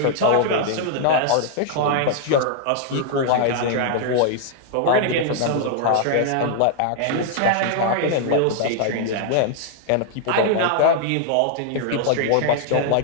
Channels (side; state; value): both; different; correlation -0.01